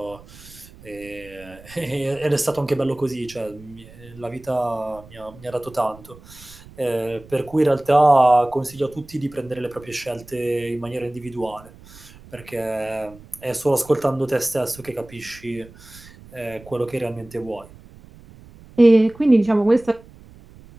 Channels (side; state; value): right; noise; rumble, 21 dB below the sound